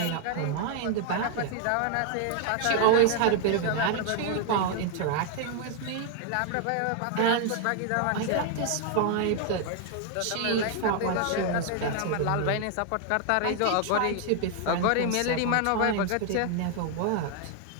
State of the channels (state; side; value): different; both; correlation 0.00